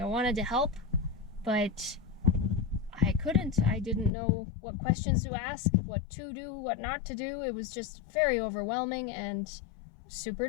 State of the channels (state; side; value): drops out; right; at 4.1 s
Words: wanted to help, but I couldn't. I didn't know what questions to ask, what to do, what not to do. It was just very overwhelming and super